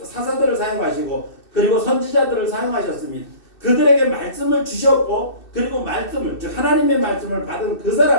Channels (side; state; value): right; late; 2.6 ms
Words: 사용하시고 그리고 선지자들을 사용하셨습니다. 그들에게 말씀을 주셨고 그리고 즉 하나님의 말씀을 받은 그